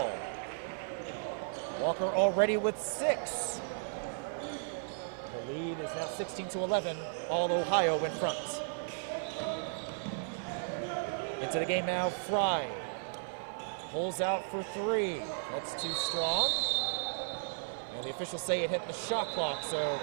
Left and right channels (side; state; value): left; silent; 55 dB below the other